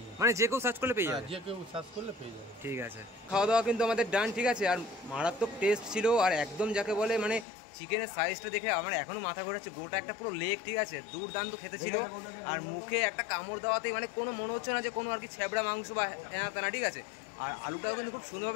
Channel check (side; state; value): right; drops out; at 7.5 s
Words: মানে যে কেউ সার্চ করলে পেয়ে যাবে? যে কেউ সার্চ করলে পেয়ে যাবে। ঠিক আছে। খাওয়া দাওয়া কিন্তু আমাদের ডান, ঠিক আছে? আর মারাত্মক টেস্ট ছিল, আর একদম যাকে বলে মানে চিকেনের সাইজটা দেখে আমার এখনো মাথা ঘোরাচ্ছে। গোটা একটা পুরো লেগ, ঠিক আছে? দুর্দান্ত খেতে ছিল। আর মুখে একটা কামড় দেওয়াতেই মানে কোনো মনে হচ্ছে না যে কোনো আর কি ছেবড়া মাংস বা এনা তেনা, ঠিক আছে? আর আলুটাও কিন্তু খুব